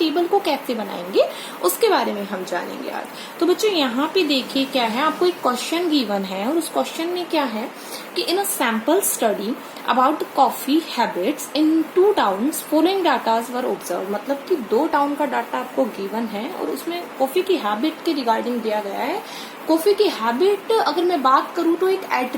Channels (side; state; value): both; identical; correlation 1.00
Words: को कैसे बनाएंगे उसके बारे में हम जानेंगे आज। तो बच्चों यहाँ पे देखिए क्या है, आपको एक क्वेश्चन गिवन है और उस क्वेश्चन में क्या है कि in a sample study about coffee habits in 2 towns following datas were observe. मतलब कि 2 टाउन का डाटा आपको गिवन है और उसमें कॉफी की हैबिट के रिगार्डिंग दिया गया है। कॉफी की हैबिट अगर मैं बात करूं तो एक